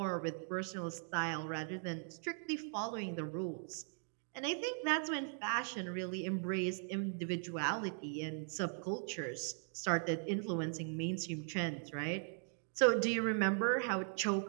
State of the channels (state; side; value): silent; left; 52 dB below the other